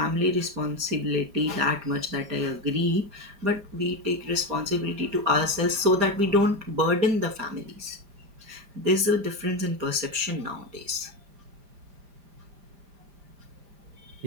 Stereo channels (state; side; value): late; left; 5.0 ms